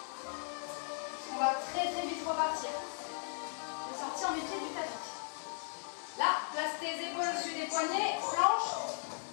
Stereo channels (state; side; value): silent; right; digital silence